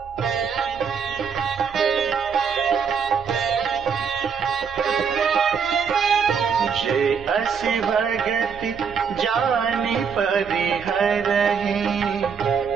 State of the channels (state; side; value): quieter; left; 6.4 dB